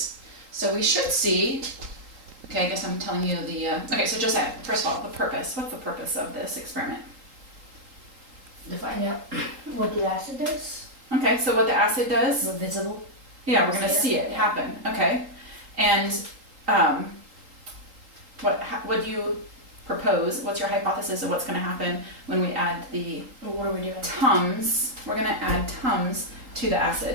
So we should see, okay, I guess I'm telling you okay, so Josiah, first of all, the purpose. What's the purpose of this experiment? To find out what the acid does. Okay, so what the acid does? We're visible. Yeah, we're going to see it happen. Okay, and what do you propose? What's your hypothesis of what's going to happen when we add the What are we doing? Tums? We're going to add Tums to the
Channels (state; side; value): late; left; 3.8 ms